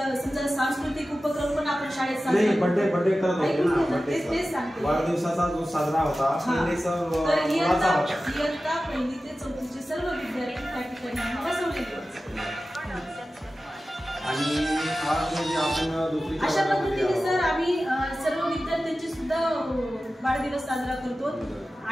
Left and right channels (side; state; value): both; normal; correlation 0.95